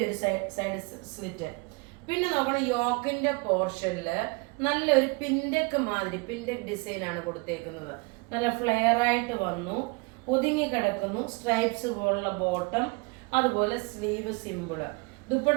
ഒരു സൈഡ് സ്ലിറ്റ്. പിന്നെ നോക്കണം, യോക്കിന്റെ പോർഷനില് നല്ലൊരു പിൻഡെക്ക് മാതിരി പിൻഡെക്ക് ഡിസൈൻ ആണ് കൊടുത്തേക്കുന്നത്. നല്ല ഫ്ലെയർ ആയിട്ട് വന്നു, ഒതുങ്ങി കിടക്കുന്നു. സ്ട്രൈപ്സ് പോലുള്ള ബോട്ടം, അതുപോലെ സ്ലീവ് സിമ്പിള്.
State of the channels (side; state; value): left; quieter; 29.4 dB